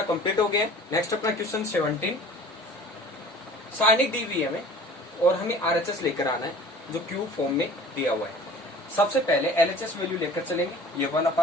कंप्लीट हो गया। नेक्स्ट अपना क्वेश्चन 17, साइनिक दी हुई है हमें और हमें RHS लेकर आना है जो क्यूब फॉर्म में दिया हुआ है। सबसे पहले LHS वैल्यू लेकर चलेंगे, ये वाला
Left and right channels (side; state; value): both; normal; correlation 0.44